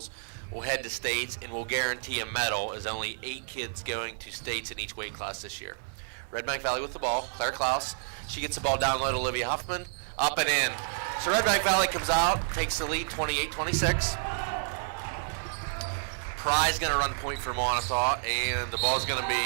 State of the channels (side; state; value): left; silent; digital silence